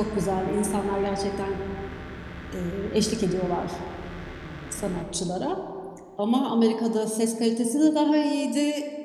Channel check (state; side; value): identical; both; correlation 1.00